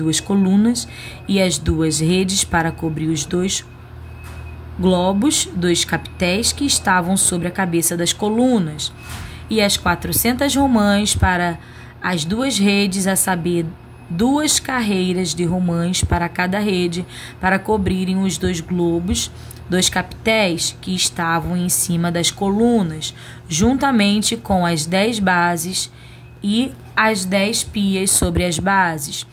colunas, e as 2 redes para cobrir os 2 globos dos capitéis que estavam sobre a cabeça das colunas, e as 400 romãs para as 2 redes, a saber, 2 carreiras de romãs para cada rede, para cobrirem os 2 globos dos capitéis que estavam em cima das colunas, juntamente com as 10 bases e as 10 pias sobre as bases,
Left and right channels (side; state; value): both; identical; correlation 1.00